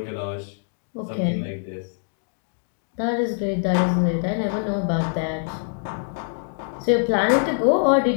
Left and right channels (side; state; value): right; silent; digital silence